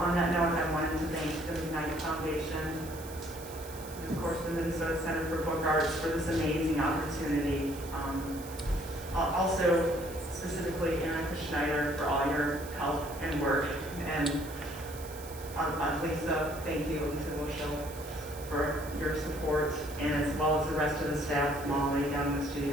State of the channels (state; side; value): noise; right; hiss, 16 dB below the sound